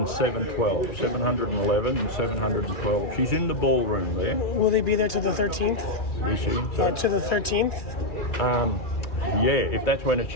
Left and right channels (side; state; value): right; late; 2.3 ms